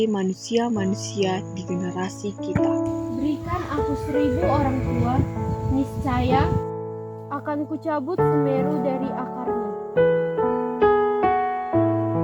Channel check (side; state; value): both; identical; correlation 1.00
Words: manusia-manusia di generasi kita. Berikan aku 1000 orang tua, niscaya akan kucabut Semeru dari akarnya.